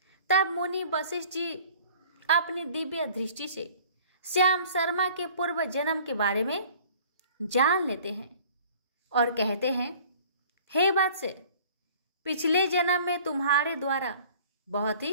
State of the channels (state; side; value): inverted; both; correlation -0.50